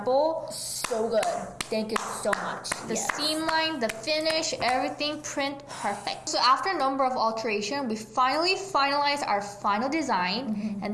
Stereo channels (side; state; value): both; identical; correlation 1.00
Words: so good. Thank you so much. The seam line, the finish, everything, print, perfect. So after a number of alterations, we finally finalized our final design,